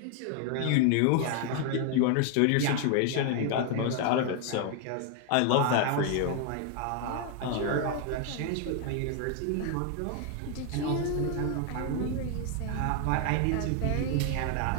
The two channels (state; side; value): different; both; correlation 0.00